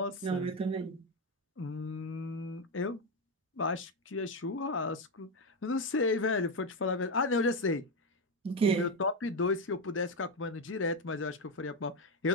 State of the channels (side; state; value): both; normal; correlation 0.09